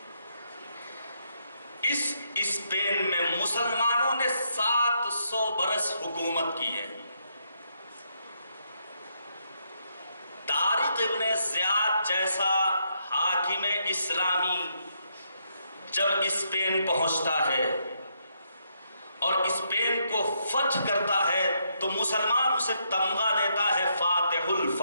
اس اسپین میں مسلمانوں نے 700 برس حکومت کی ہے۔ طارق ابن زیاد جیسا حاکم اسلامی جب اسپین پہنچتا ہے اور اسپین کو فتح کرتا ہے تو مسلمان اسے تمغہ دیتا ہے، فاتح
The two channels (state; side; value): inverted; both; correlation -0.76